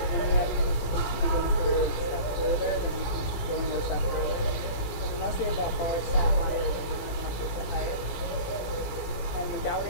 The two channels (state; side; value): late; right; 17 ms